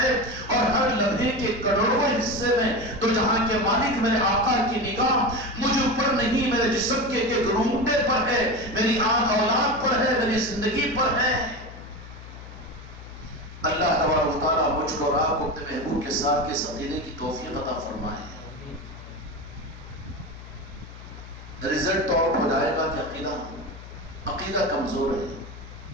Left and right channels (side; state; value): left; noise; hum, 15 dB below the sound